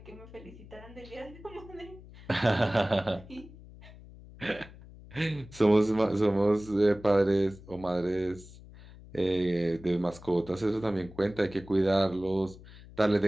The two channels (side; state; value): left; noise; hum, 19 dB below the sound